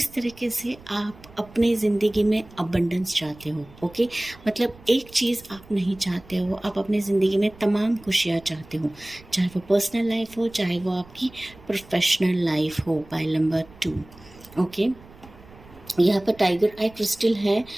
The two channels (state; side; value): noise; right; rumble, 23 dB below the sound